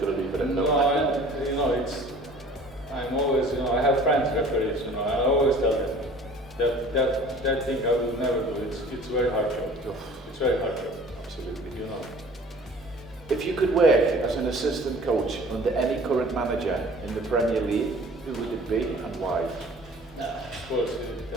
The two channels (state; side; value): normal; both; correlation 0.47